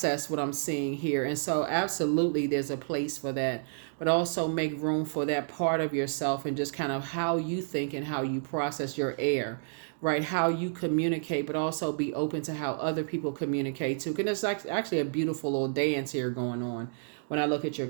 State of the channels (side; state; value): left; silent; digital silence